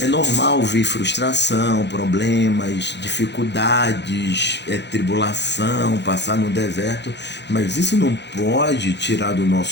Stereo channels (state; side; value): late; right; 0.50 ms